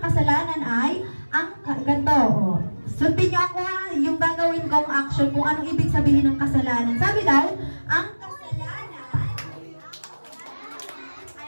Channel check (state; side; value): inverted; both; correlation -1.00